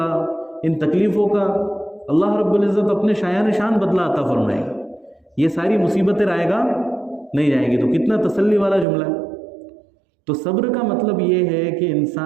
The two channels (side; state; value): left; drops out; at 8.8 s